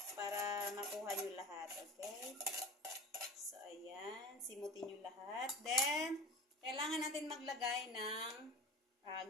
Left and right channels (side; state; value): both; normal; correlation 0.34